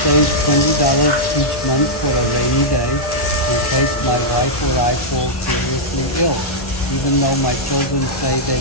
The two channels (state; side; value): late; right; 1.1 ms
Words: $20 each month for a rainy day in case my wife or I fall seriously ill. Even though my children say